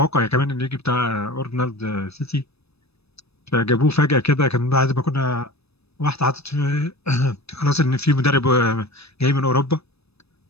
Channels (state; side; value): late; right; 0.78 ms